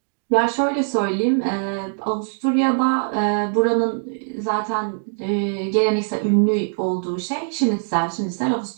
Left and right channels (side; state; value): left; silent; digital silence